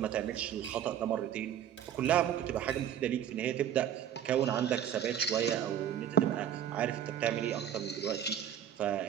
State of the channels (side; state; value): left; quieter; 9.9 dB